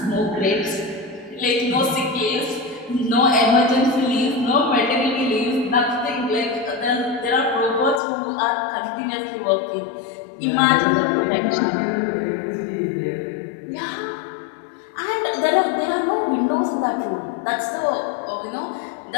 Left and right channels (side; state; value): right; drops out; at 8.0 s